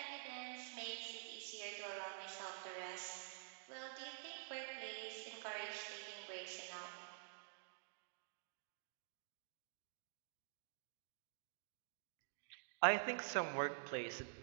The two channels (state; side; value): silent; left; digital silence